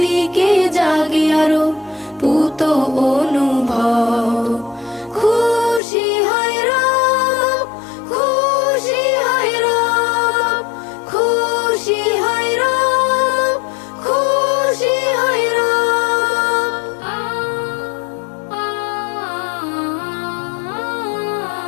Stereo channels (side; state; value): right; drops out; at 5.8 s